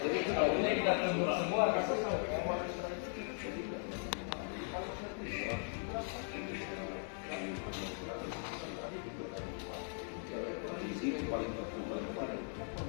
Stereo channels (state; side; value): silent; right; 52 dB below the other